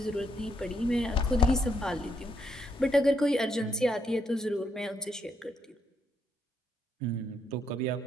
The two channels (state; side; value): normal; both; correlation 0.76